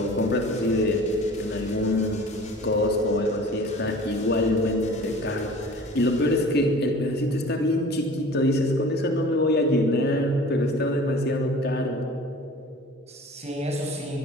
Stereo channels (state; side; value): normal; both; correlation 0.43